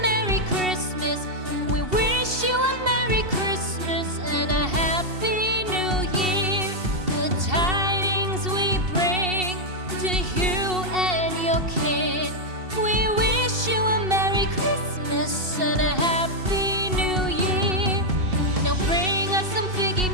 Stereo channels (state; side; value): late; left; 2.7 ms